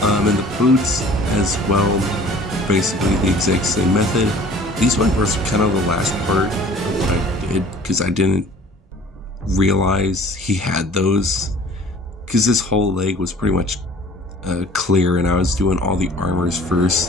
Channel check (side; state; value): both; normal; correlation 0.49